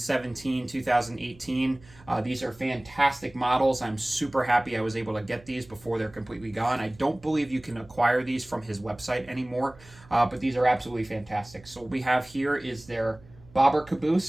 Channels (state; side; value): noise; right; hum, 24 dB below the sound